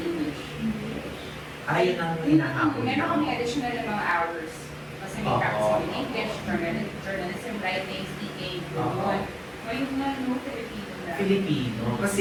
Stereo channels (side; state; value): both; identical; correlation 1.00